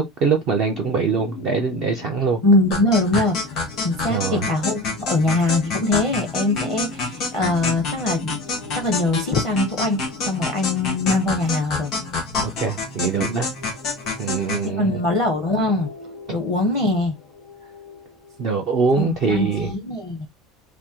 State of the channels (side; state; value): both; normal; correlation 0.32